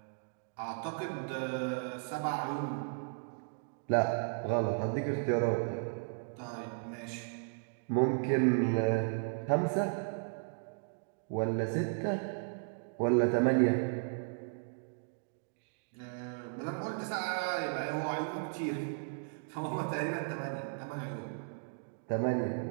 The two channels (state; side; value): silent; left; digital silence